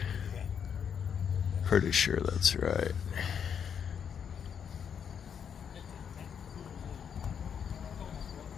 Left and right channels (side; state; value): right; quieter; 7.6 dB